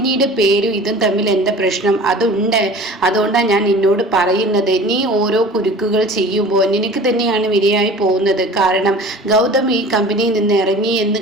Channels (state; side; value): normal; both; correlation 0.42